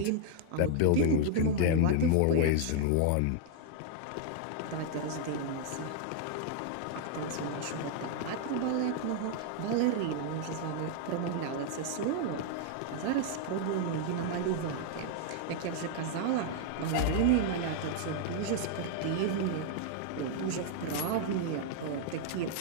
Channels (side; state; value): both; different; correlation 0.00